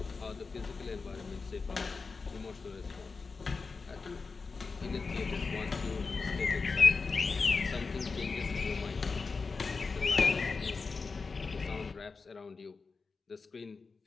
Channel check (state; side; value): quieter; right; 4.5 dB